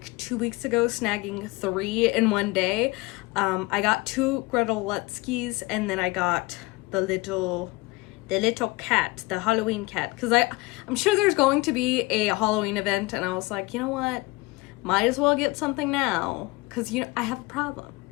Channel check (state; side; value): quieter; right; 23.6 dB